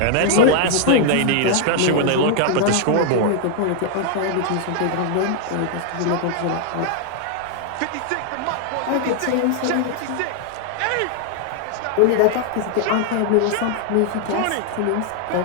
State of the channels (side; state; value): both; different; correlation 0.00